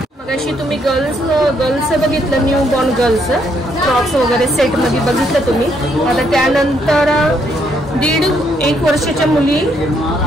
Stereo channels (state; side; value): normal; both; correlation 0.72